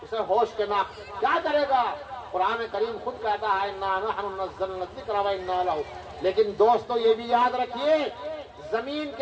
اسے ہوش کے نہ کیا کرے گا. قرآن کریم خود کہتا ہے انا نحن نزلنا الذکر وانا لہ. لیکن دوستو یہ بھی یاد رکھیے زمین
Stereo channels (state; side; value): identical; both; correlation 1.00